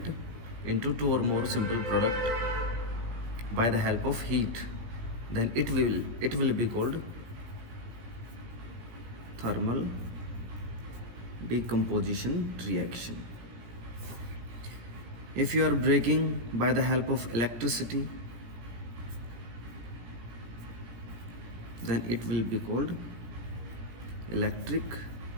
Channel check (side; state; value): left; late; 17 ms